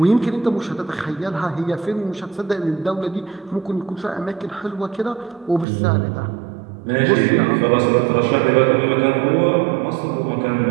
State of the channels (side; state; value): left; drops out; at 5.7 s